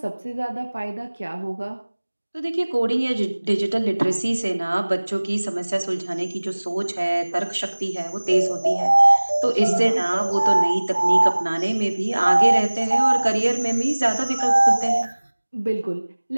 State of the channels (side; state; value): both; inverted; correlation -1.00